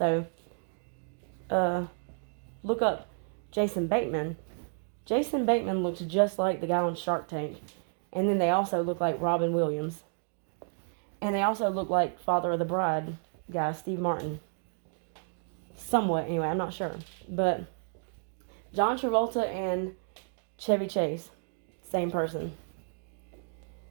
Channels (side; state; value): left; silent; 57 dB below the other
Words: look up Jason Bateman. Jason Bateman looks just like the guy on Shark Tank. And then they also look like Robin Williams. And they also look like Father of the Bride guy, Steve Martin. Somewhat, anyway, I'm not sure. But John Travolta and Chevy Chase, same person.